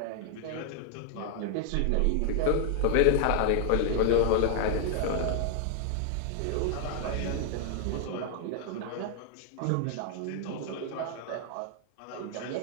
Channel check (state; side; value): different; both; correlation 0.00